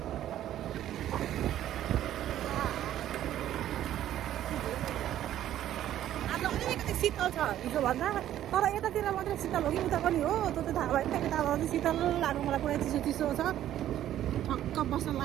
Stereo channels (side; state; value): left; quieter; 12.1 dB